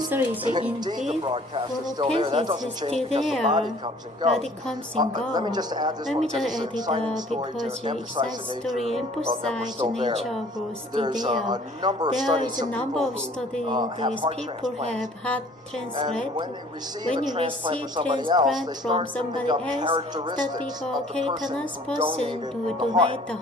indeed the broadcast is still there. That doesn't change because the body comes and goes. Let me just add this one because it's an exciting story to emphasize the nature of growth. There's a number of studies of people have heart transplant. When you receive transplant from somebody else, that becomes a cancerous person to donate the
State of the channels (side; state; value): both; normal; correlation 0.53